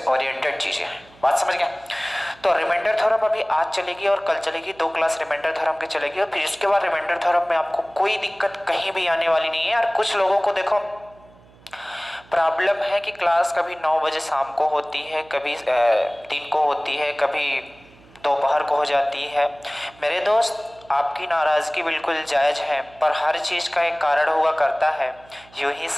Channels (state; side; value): noise; right; hum, 26 dB below the sound